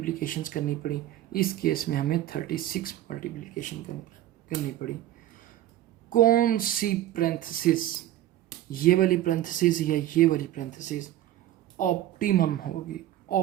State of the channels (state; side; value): quieter; left; 13.5 dB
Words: करनी पड़ी, इस केस में हमें 36 मल्टीप्लिकेशन करनी पड़ी। कौन सी पैरेंथेसिस, ये वाली पैरेंथेसिस या ये वाली पैरेंथेसिस ऑप्टिमल